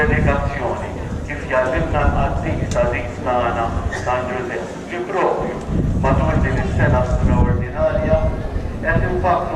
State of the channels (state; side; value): identical; both; correlation 1.00